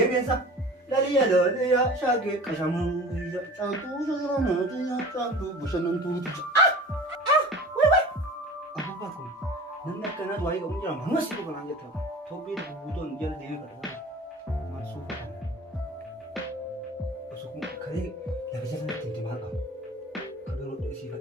Laliya laliya shaagee qashamuu caaltuu sasiranaatiya caaltuu bashannantuuti. Apa kun? Namni akkanaatu waa'ee qabu jira manuma si dhufa naan jetta. Tophee gurguutoon jala deemee kadhataa maal suufa kana. Osoo kun karee lafa jala ittiin maal qabu? Kadoo rodha isii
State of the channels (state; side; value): normal; both; correlation 0.40